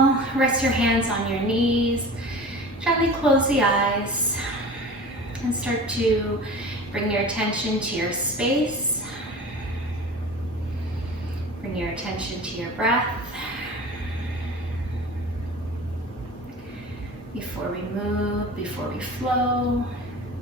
rest your hands on your knees, gently close the eyes and start to bring your attention to your space. Bring your attention to your breath. Before we move, before we flow.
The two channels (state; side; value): normal; both; correlation 0.37